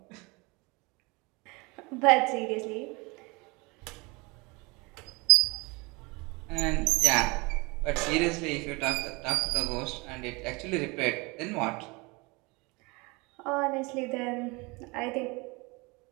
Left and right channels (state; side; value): quieter; left; 26.3 dB